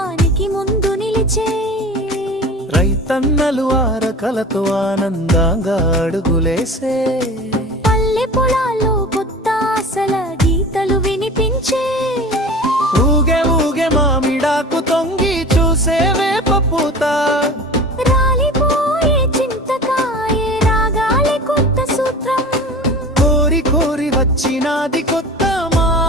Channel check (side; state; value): both; normal; correlation 0.37